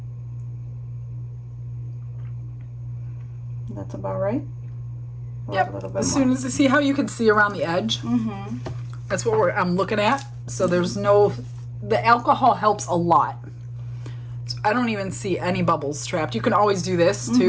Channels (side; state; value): both; identical; correlation 1.00